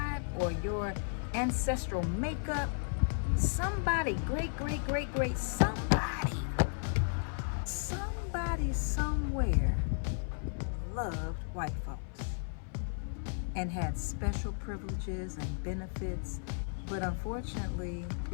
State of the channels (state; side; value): silent; right; 55 dB below the other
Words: or your ancestral makeup. Somebody, great, somebody somewhere loved white folks and had special privileges and benefits, but unfortunately,